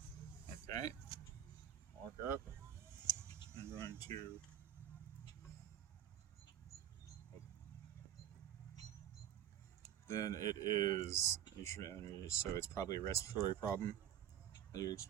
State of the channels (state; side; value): quieter; left; 10.7 dB